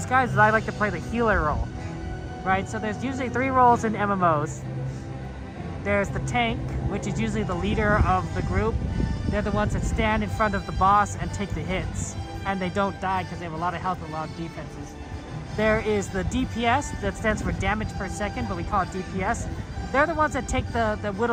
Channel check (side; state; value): both; identical; correlation 1.00